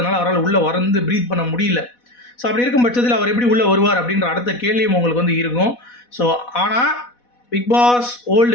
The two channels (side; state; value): right; late; 4.1 ms